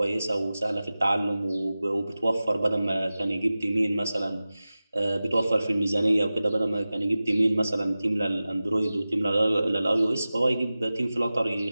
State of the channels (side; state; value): both; inverted; correlation -0.96